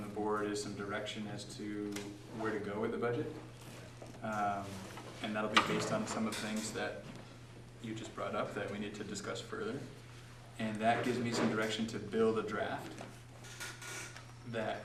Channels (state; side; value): identical; both; correlation 1.00